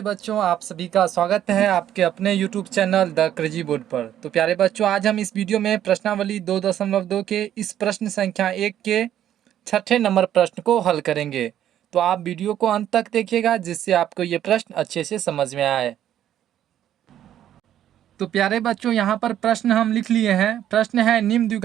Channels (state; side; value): quieter; left; 11.1 dB